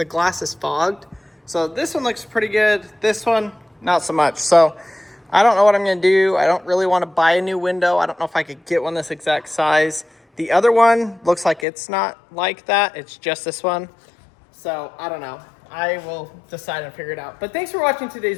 glass is fogged. So this one looks pretty good. This one, not so much. So I don't know what I'm going to do. I don't really want to buy a new window. I don't know if I could get one this exact size. The other one looks like it's not like that. It's just this one. So I don't know. I will decide and figure it out. But thanks for watching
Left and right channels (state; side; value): drops out; right; at 11.7 s